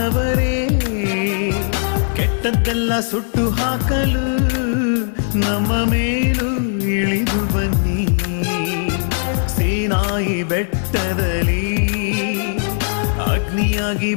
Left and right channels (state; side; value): silent; right; digital silence